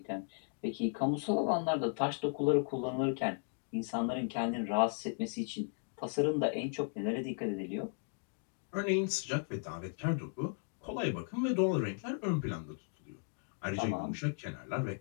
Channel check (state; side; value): silent; right; 54 dB below the other